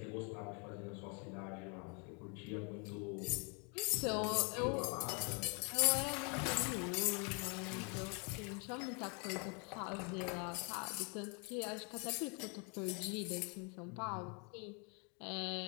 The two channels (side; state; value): right; quieter; 35.0 dB